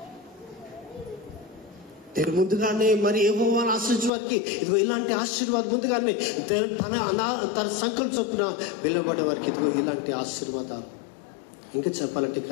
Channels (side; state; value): right; drops out; at 4.1 s